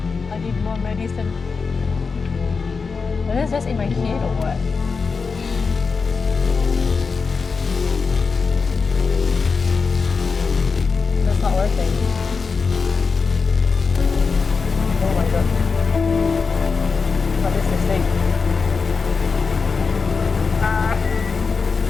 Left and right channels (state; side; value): quieter; right; 4.9 dB